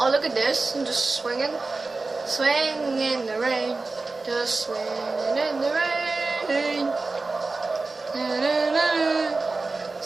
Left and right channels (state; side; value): quieter; left; 3.7 dB